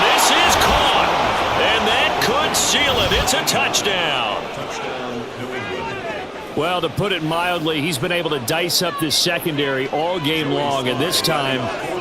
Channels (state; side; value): identical; both; correlation 1.00